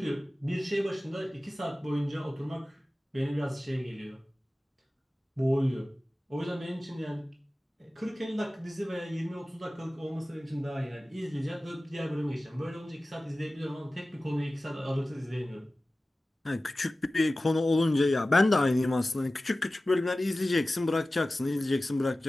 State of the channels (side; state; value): both; normal; correlation 0.96